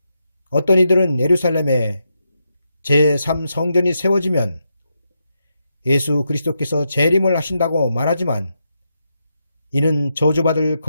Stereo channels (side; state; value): both; inverted; correlation -0.83